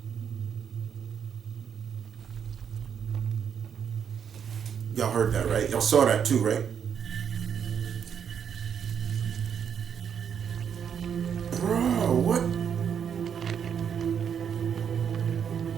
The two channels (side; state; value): left; quieter; 7.8 dB